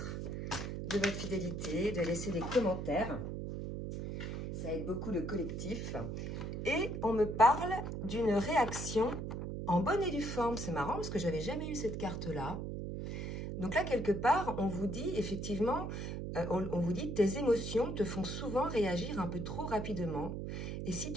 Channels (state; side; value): noise; right; hum, 4 dB below the sound